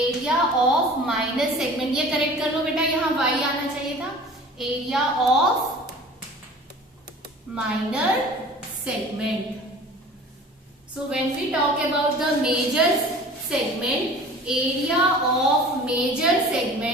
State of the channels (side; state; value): both; normal; correlation 0.43